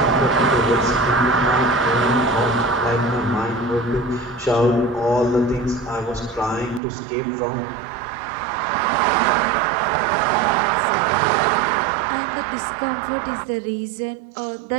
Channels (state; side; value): drops out; left; at 6.8 s